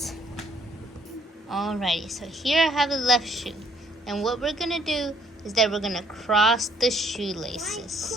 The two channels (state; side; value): normal; both; correlation 0.64